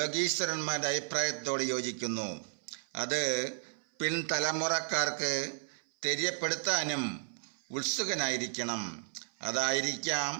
അഭിപ്രായത്തോട് യോജിക്കുന്നു. അത് പിൻതലമുറക്കാർക്ക് തെര്യപ്പെടുത്താനും ഉത്സുകനായിരിക്കണം. അതായിരിക്കാം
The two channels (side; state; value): left; silent; 56 dB below the other